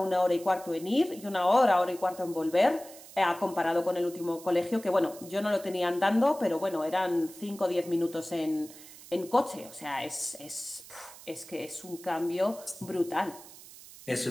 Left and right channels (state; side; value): noise; right; hiss, 18 dB below the sound